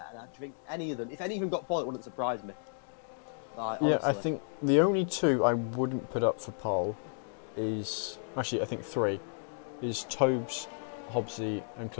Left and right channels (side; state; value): right; silent; digital silence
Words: and I think if any of them got pole, it wouldn't surprise me. Like, yeah, I think the only 2 I wouldn't put up for pole is actually I think 3 is Tobes, Hobbsy, and